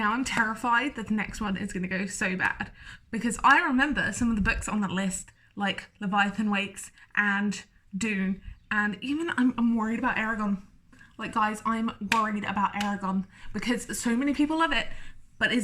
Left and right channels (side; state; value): both; identical; correlation 1.00